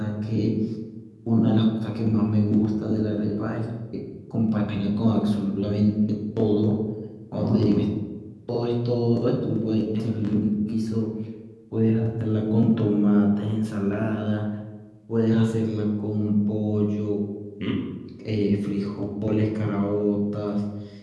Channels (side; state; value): both; identical; correlation 1.00